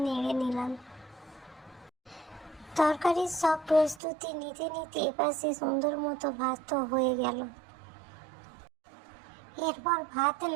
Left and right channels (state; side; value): drops out; left; at 4.0 s